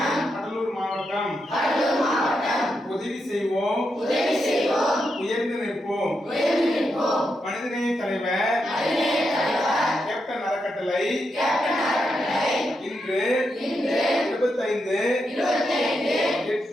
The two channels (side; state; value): both; normal; correlation 0.84